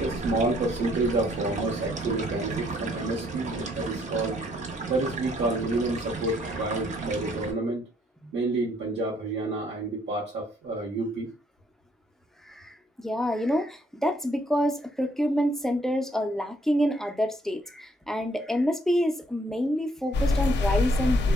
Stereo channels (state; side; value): normal; both; correlation 0.67